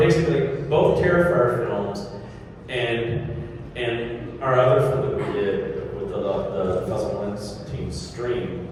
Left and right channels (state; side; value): identical; both; correlation 1.00